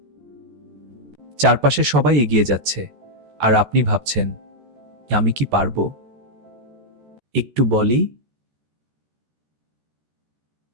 চারপাশে সবাই এগিয়ে যাচ্ছে আর আপনি ভাবছেন, আমি কি পারবো? একটু বলি,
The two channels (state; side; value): late; left; 14 ms